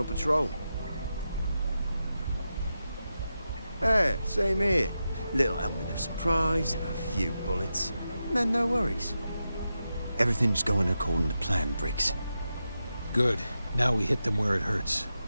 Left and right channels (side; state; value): both; inverted; correlation -0.89